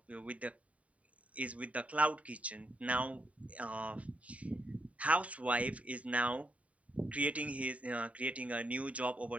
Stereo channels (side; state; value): left; late; 0.067 ms